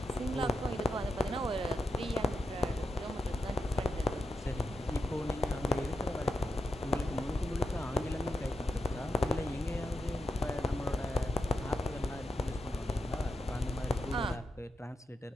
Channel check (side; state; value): both; normal; correlation 0.86